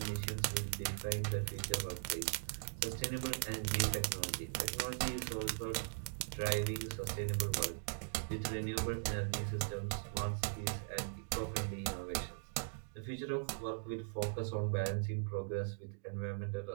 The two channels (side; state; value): left; silent; digital silence